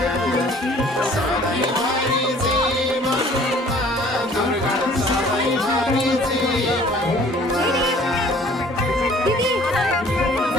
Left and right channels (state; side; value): normal; both; correlation 0.53